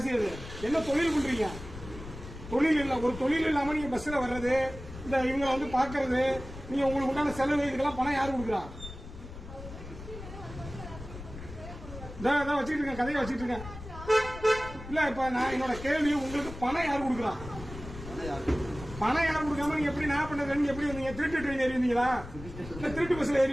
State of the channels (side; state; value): left; noise; rumble, 12 dB below the sound